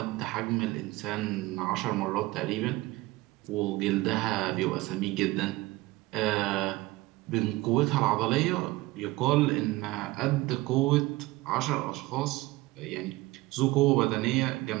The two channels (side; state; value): left; quieter; 20.1 dB